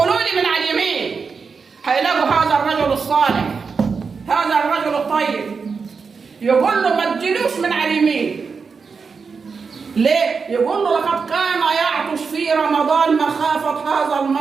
لي من على اليمين، هيلاقوا هذا الرجل الصالح، هذا الرجل الطيب، يقول له ما تجيلوش من على اليمين. ليه؟ يقول له لقد كان يعطش في رمضان مخافة هذا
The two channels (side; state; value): left; quieter; 5.3 dB